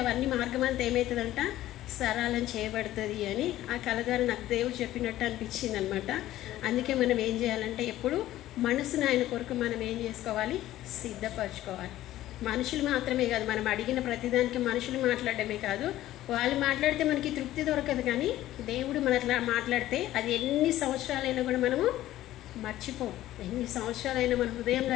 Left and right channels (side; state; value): right; quieter; 14.4 dB